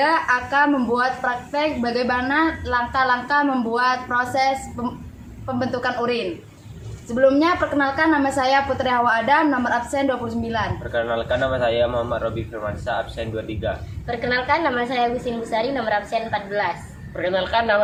akan membuat praktek bagaimana langkah-langkah membuat proses pembentukan urin. Sebelumnya, perkenalkan, nama saya Putri Hawa Adam, nomor absen 29. Perkenalkan, nama saya Muhammad Robi Firmansyah, absen 23. Perkenalkan, nama saya Agustin Busari, nomor absen 14. Perkenalkan,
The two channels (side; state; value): both; identical; correlation 1.00